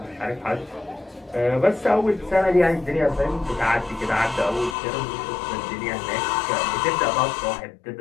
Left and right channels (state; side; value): drops out; right; at 4.8 s